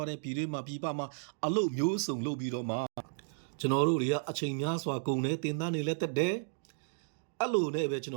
းတဲ့ပြည်တွင်းမှာပြည်ပမှာအလုပ်မျိုးစုံလုပ်ပြီးတော့မှကျွန်တော်တို့တွေကအချိန်များစွာကုန်တယ်တင်တန်းနေလဲတက်တယ်အဲ့လိုနဲ့ပဲကျွန်တ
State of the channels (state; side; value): silent; left; digital silence